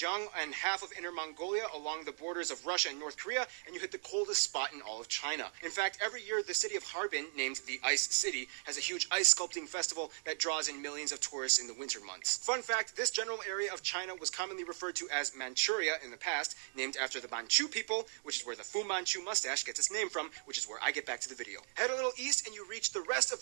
and half of Inner Mongolia along the borders of Russia and North Korea, and you hit the coldest spot in all of China. In fact, every year the city of Harbin, named the Ice City, has a huge ice sculpting festival that draws in millions of tourists in the winter months. Fun fact, this general area of China was commonly referred to as Manchuria in the past, named after the Manchu people, which is where the Fu Manchu mustache gets its name from, which is where I get back to the video. Head a little east and you reach the rest of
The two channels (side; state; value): left; silent; digital silence